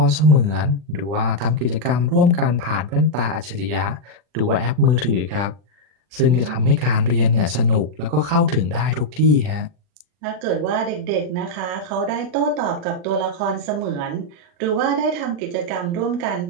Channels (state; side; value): late; left; 40 ms